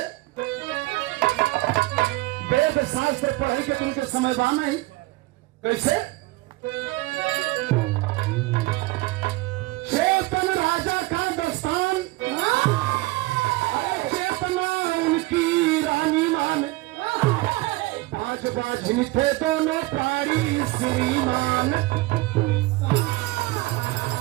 वेद शास्त्र पढ़े के तुमके समय बा नहीं कैसे। चेतन राजा का दस्तान, चेतना उनकी रानी मान, 5 बाझिन थे दोनों प्राणी श्रीमान।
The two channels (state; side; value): quieter; left; 20.5 dB